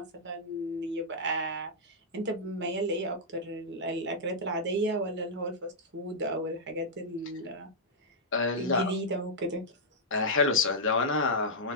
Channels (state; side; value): normal; both; correlation -0.08